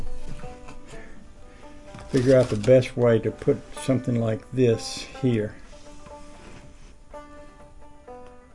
figure out the best way to put something like this here.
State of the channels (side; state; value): both; identical; correlation 1.00